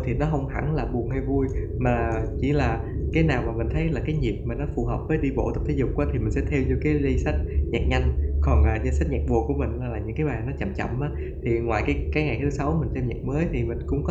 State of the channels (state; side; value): identical; both; correlation 1.00